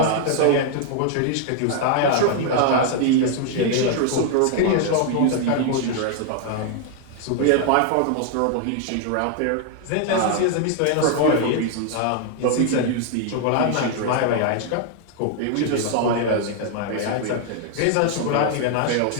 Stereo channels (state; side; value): different; both; correlation 0.00